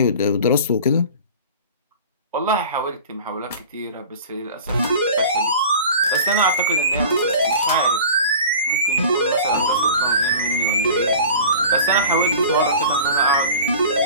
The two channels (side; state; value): both; inverted; correlation -0.39